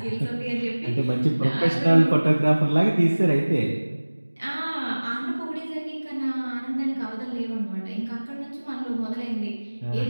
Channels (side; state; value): both; inverted; correlation -1.00